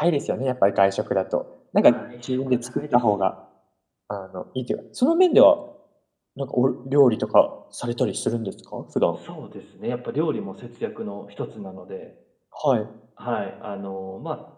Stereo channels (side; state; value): both; identical; correlation 1.00